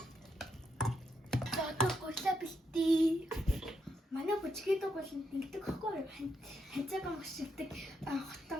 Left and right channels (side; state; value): both; normal; correlation 0.81